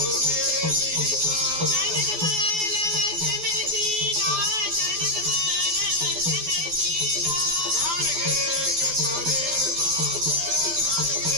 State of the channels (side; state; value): left; late; 12 ms